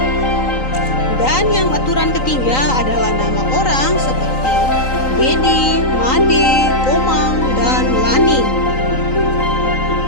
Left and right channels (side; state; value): right; late; 3.9 ms